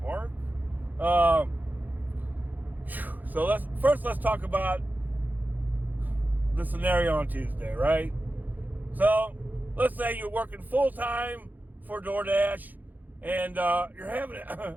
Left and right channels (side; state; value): left; late; 0.084 ms